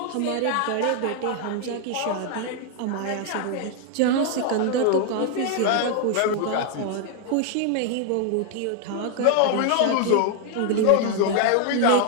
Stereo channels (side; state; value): both; different; correlation 0.00